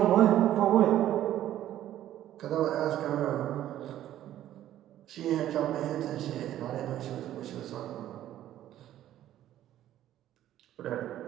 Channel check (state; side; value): quieter; left; 12.5 dB